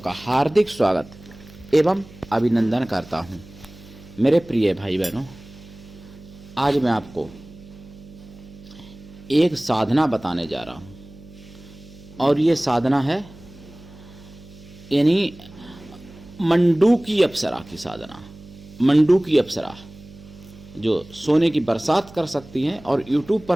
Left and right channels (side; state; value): right; noise; hum, 20 dB below the sound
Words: हार्दिक स्वागत एवं अभिनंदन करता हूं। मेरे प्रिय भाई बहनों, आज मैं आपको एक साधना बताने जा रहा हूं और ये साधना है यानी मंडूकी अप्सरा की साधना। मंडूकी अप्सरा जो सोने की बरसात कर सकती हैं और YouTube